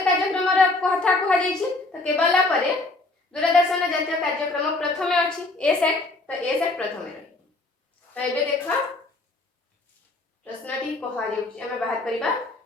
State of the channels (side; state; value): right; quieter; 3.1 dB